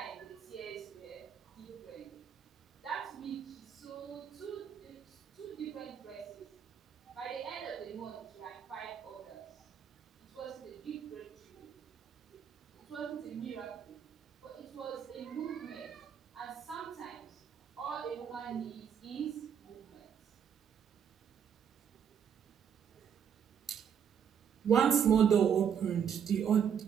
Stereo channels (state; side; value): quieter; left; 8.0 dB